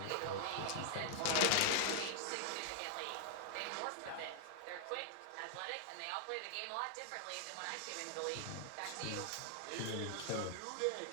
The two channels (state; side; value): different; both; correlation 0.00